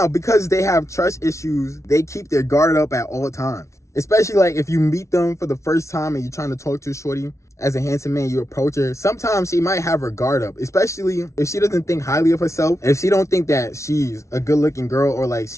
because they have trust issues, they keep their guard up at all times. Especially like if you meet them for the first time and you're trying to talk to a shorty, as a handsome man, you approach her, sometimes she might have her guard up, especially if she doesn't think highly of herself. If she don't think that she's a good looking girl, or like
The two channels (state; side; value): late; right; 0.14 ms